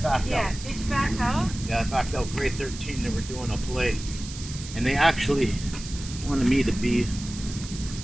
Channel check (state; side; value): noise; right; hiss, 12 dB below the sound